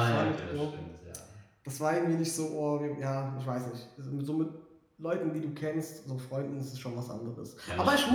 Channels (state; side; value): identical; both; correlation 1.00